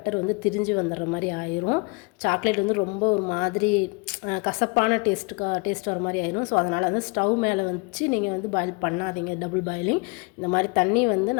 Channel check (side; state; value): right; quieter; 30.2 dB